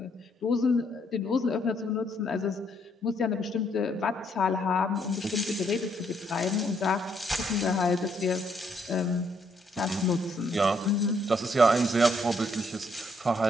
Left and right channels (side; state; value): both; normal; correlation 0.71